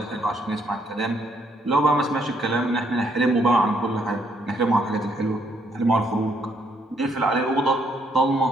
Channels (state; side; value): normal; both; correlation 0.71